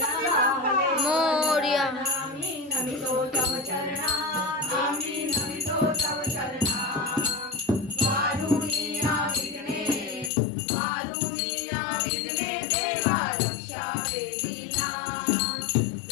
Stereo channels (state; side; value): drops out; right; at 10.3 s